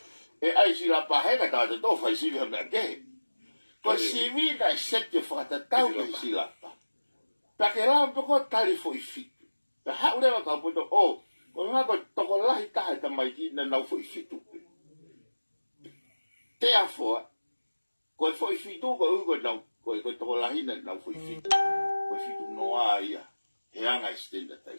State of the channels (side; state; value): both; inverted; correlation -1.00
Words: E ai si la pahega ta te to fai si me ke. Ko si vi da sette fata tau ke si la pa. Pa ke la ko tali foi fit. Ta ha ule ka poto o. Ko nga ko to ko la hita ta mai ki na na foi fitu. Te a fo. Ko foi fitu ko na ko to ko la hina na foi fitu. Ko fitu no ai. E anga stenda ta